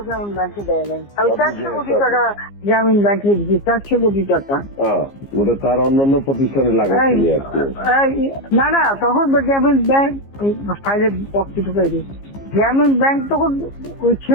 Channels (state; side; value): late; right; 15 ms